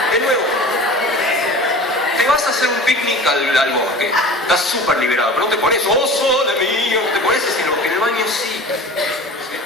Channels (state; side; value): normal; both; correlation 0.39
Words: De nuevo. Te vas a hacer un picnic al bosque, estás súper liberado, pero no te pones, ¡oh, sole mío! No te pones así, en el baño sí.